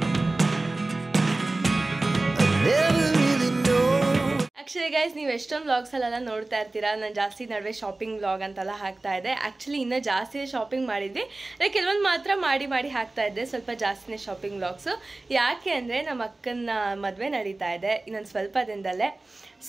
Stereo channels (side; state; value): left; quieter; 3.0 dB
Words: Actually guys, ನೀವು ಎಷ್ಟೊಂದು vlogs ಅಲ್ಲೆಲ್ಲ ನೋಡ್ತಾ ಇರ್ತೀರಾ. ನಾನು ಜಾಸ್ತಿ ನಡುವೆ ಶಾಪಿಂಗ್ ವ್ಲಾಗ್ ಅಂತೆಲ್ಲ ಹಾಕ್ತಾ ಇದ್ದೆ. ಆ್ಯಕ್ಚುಲಿ ಇನ್ನೂ ಜಾಸ್ತಿ ಶಾಪಿಂಗ್ ಮಾಡಿದ್ವಿ, ಕೆಲವೊಂದು ಮಾತ್ರ ಮಾಡಿ ಹಾಕ್ತಾ ಇದ್ದೆ. ಸ್ವಲ್ಪ ಜಾಸ್ತಿನೇ ಶಾಪಿಂಗ್ ವ್ಲಾಗ್ಸು. ಯಾಕೆ ಅಂದರೆ ನಮ್ಮ ಅಕ್ಕನ ಮದುವೆ ನಡೀತಾ ಇದೆ ಇನ್ನೊಂದು ಸ್ವಲ್ಪ ದಿನದಲ್ಲೇ.